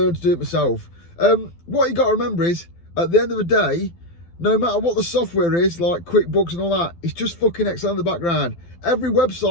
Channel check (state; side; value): late; right; 12 ms